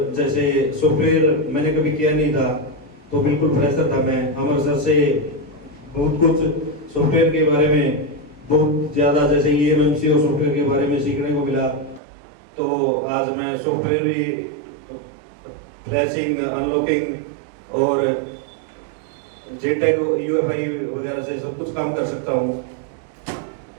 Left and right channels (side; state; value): left; drops out; at 12.0 s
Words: जैसे सॉफ्टवेयर मैंने कभी किया नहीं था, तो बिल्कुल फ्रेशर था मैं। अमर सर से बहुत कुछ सॉफ्टवेयर के बारे में बहुत ज़्यादा, जैसे EMMC और सॉफ्टवेयर के बारे में सीखने को मिला। तो आज मैं सॉफ्टवेयर भी फ्लैशिंग, अनलॉकिंग और JTAG, UFI वगैरह से सब कुछ काम कर सकता हूँ।